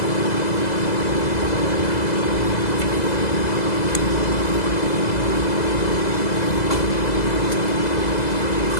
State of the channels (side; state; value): right; late; 2.0 ms